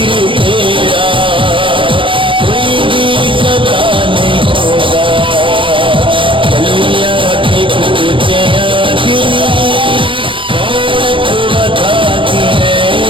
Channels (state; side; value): late; left; 0.25 ms